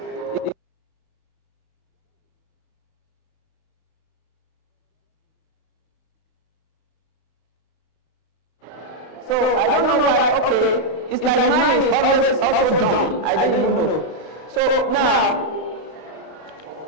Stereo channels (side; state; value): right; late; 32 ms